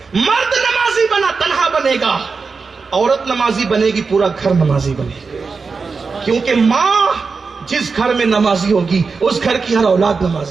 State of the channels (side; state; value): left; quieter; 4.8 dB